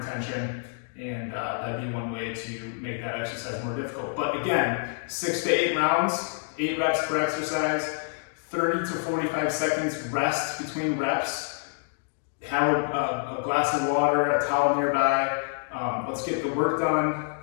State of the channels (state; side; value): silent; right; 60 dB below the other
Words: tension, and that'd be one way to make that exercise more difficult. But again, 6 to 8 rounds, 8 reps per exercise, 30 to 45 seconds rest between reps. Have a glass of water, a towel nearby. Let's get the work done,